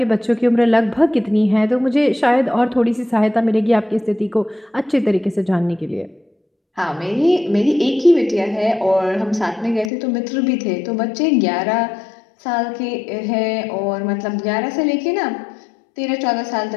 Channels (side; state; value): right; drops out; at 9.9 s